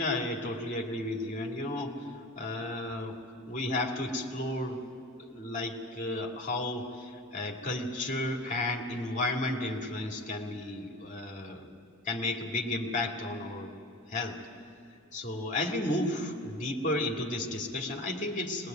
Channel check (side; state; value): both; normal; correlation 0.35